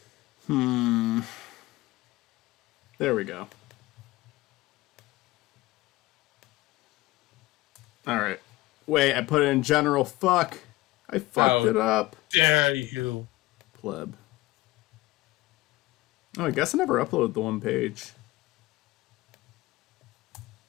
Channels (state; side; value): quieter; right; 18.9 dB